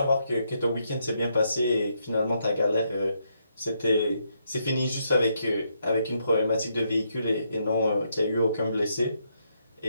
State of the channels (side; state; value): both; inverted; correlation -0.77